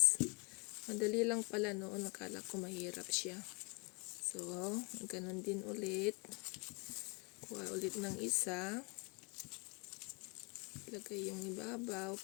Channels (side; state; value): right; quieter; 30.7 dB